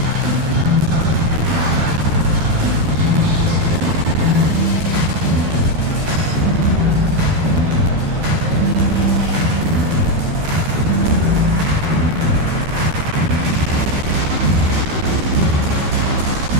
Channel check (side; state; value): left; late; 13 ms